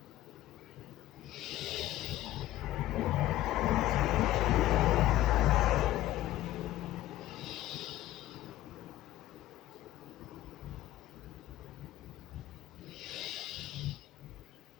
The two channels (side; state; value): right; quieter; 14.8 dB